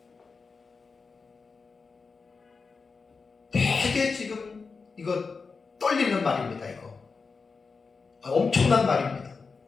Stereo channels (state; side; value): quieter; right; 4.7 dB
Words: 되게 지금 이거 떨리는 말입니다. 이거 엄청난 말입니다.